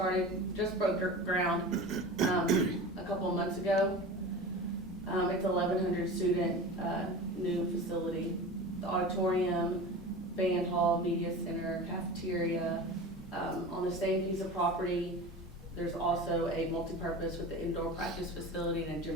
ground, a couple of months ago. It's 1,100 student, new facility. The auditorium, band hall, media center, cafeteria. On the same piece of property, there's also a multipurpose with the indoor practice facility and a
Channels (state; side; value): normal; both; correlation 0.32